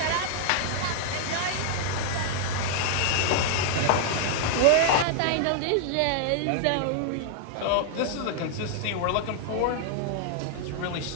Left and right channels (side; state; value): both; different; correlation 0.00